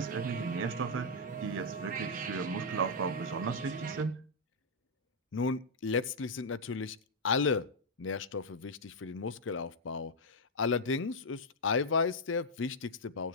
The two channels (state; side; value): normal; both; correlation -0.04